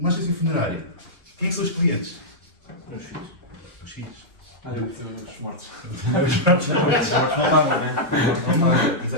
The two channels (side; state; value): both; normal; correlation -0.08